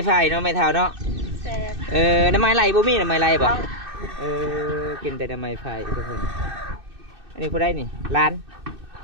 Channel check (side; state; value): left; late; 2.6 ms